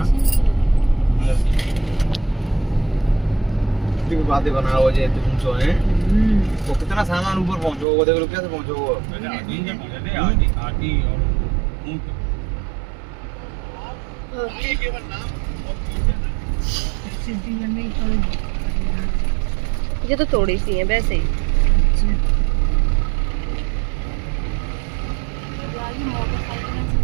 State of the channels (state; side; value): drops out; left; at 7.9 s